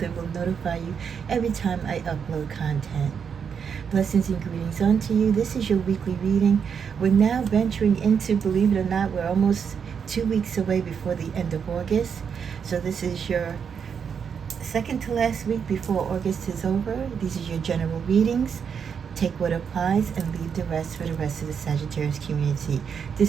will notify you every time I upload content. Blessings and greetings unto you. This is your weekly reading. We're now venturing into, believe it or not, we're almost 2 weeks away before the end of August. So this is your second to last week before August is over. These are your general readings. Take what applies and leave the rest for the rest of the Sagittarius community.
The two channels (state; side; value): quieter; left; 6.9 dB